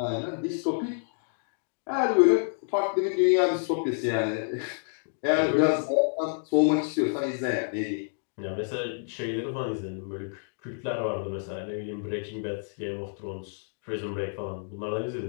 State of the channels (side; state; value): right; silent; digital silence